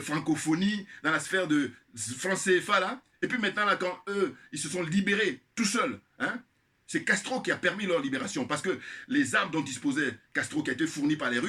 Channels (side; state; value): both; identical; correlation 1.00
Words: francophonie, dans la sphère de France CFA, là. Et puis maintenant, là, quand eux, ils se sont libérés tout seuls, hein, c'est Castro qui a permis leur libération. Parce que les armes dont disposait Castro, qui a été fournies par les